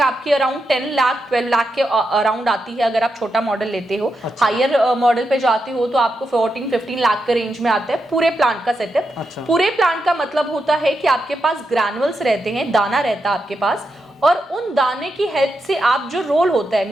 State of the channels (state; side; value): normal; both; correlation 0.85